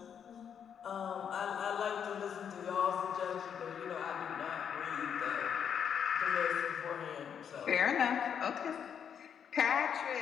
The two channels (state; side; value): quieter; right; 8.0 dB